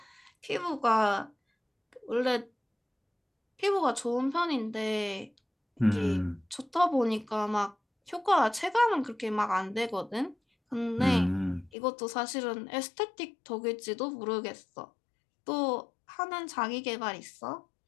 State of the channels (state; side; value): drops out; right; at 11.7 s